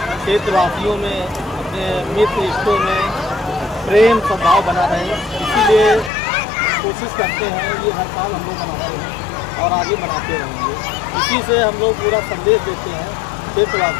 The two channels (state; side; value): drops out; right; at 6.1 s